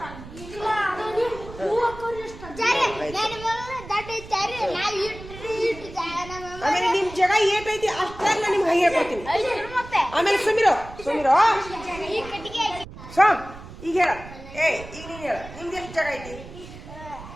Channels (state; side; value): noise; right; rumble, 15 dB below the sound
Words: ಆಮೇಲೆ ನಿಮ್ ಜಾಗ ಏಟೈತಿ ಅಷ್ಟಾಗ ನಿಮ್ಗೆ ಹಂಗೆ ಹೇಳ್ಕೊಡ್ತೀನಿ. ಆಮೇಲೆ ಸುಮಿರೋ ಸುಮಿರೋ ಸ್ವಾಮ್ ಈಗ ಹೇಳ. ಈಗ ನೀನ್ ಹೇಳ, ನಿಮ್ದು ಎಷ್ಟು ಜಾಗ ಐತಿ?